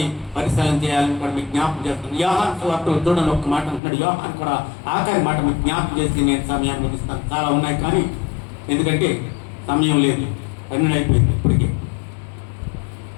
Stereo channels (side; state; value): right; drops out; at 3.8 s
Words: పరిశీలన చేయాలని కూడా మీకు జ్ఞాపకం చేస్తున్నాను. యోహాను సువార్తలో చూడండి, ఒక్క మాట అంటున్నాడు. యోహాను కూడా ఆఖరి మాట మీకు జ్ఞాపకం చేసి నేను సమయాన్ని ముగిస్తాను. చాలా ఉన్నాయి కానీ ఎందుకంటే సమయం లేదు, పన్నెండు అయిపోయింది ఇప్పటికే.